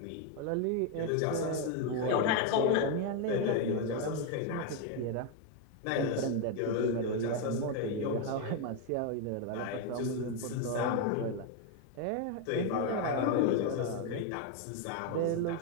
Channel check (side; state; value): both; different; correlation 0.01